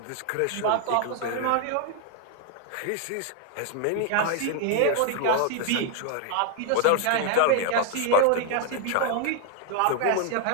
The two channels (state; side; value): different; both; correlation 0.00